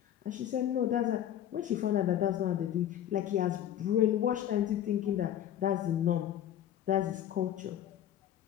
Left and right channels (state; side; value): quieter; right; 11.0 dB